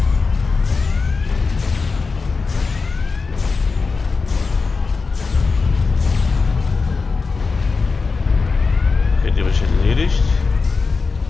Okay, die habe ich erledigt.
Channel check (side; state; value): right; quieter; 4.5 dB